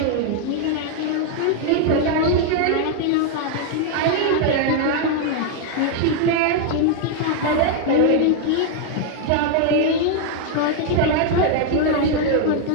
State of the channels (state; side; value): different; both; correlation 0.00